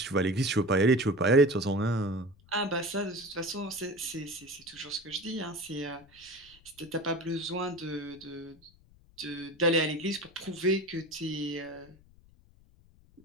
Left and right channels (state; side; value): noise; left; rumble, 27 dB below the sound